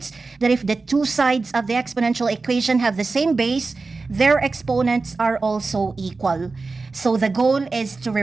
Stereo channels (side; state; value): left; quieter; 3.9 dB